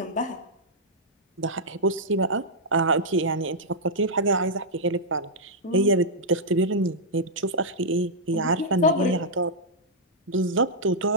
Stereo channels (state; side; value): normal; both; correlation -0.08